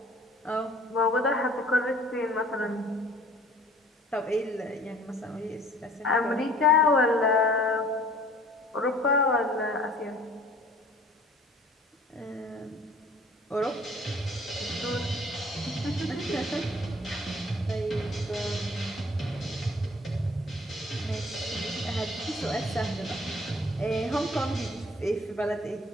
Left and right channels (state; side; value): normal; both; correlation 0.52